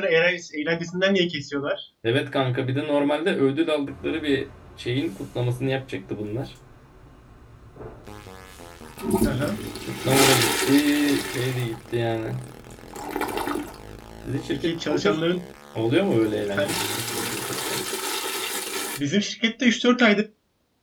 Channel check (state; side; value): identical; both; correlation 1.00